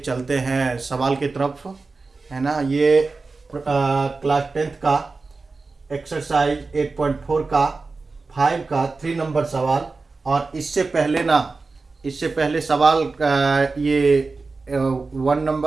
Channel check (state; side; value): quieter; left; 3.9 dB